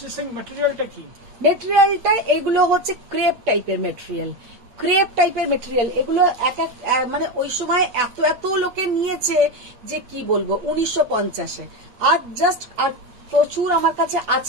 সিং, ম্যাটেরিয়ালটা কি? মেটেরিয়ালটা এগুলো হচ্ছে ক্রেপ টাইপের মেটেরিয়াল। এগুলো এক মানে ওই সময় এত লোকে নিয়েছে যে কি বলবো, 1950-এ। আর জাস্ট আর প্রচুর আমার কাছে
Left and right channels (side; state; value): left; late; 8.5 ms